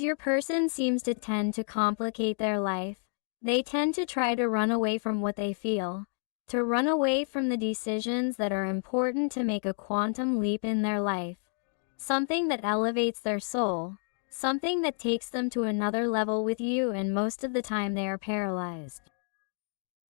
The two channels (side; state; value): right; silent; 58 dB below the other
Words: your person seems to tend to complicate their life. They tend to try to run away from what they feel, to run away from the decisions that are important to make a quantum leap in their life. Something that elevates their soul, something that takes them to another level with you, and most of the time they are paralyzed.